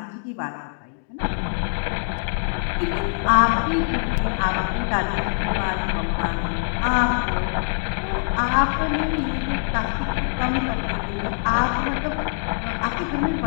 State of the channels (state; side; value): silent; right; digital silence